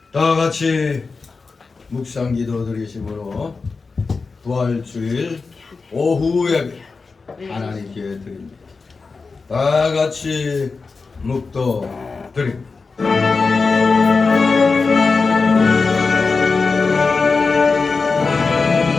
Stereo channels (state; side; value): quieter; right; 4.4 dB